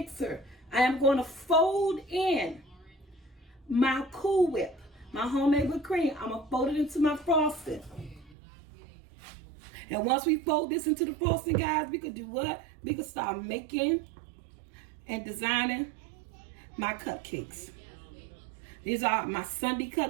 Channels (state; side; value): drops out; left; at 8.3 s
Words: I am going to fold in my Cool Whip, my homemade whipped cream. I'm gonna fold it into my frosting, and once we fold this into the frosting, guys, we could do what? We could start making and designing my cupcakes. These are my sundae